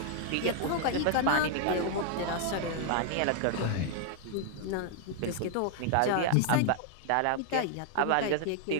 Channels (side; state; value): both; different; correlation 0.00